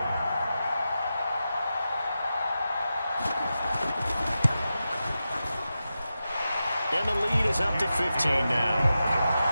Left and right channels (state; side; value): inverted; both; correlation -0.91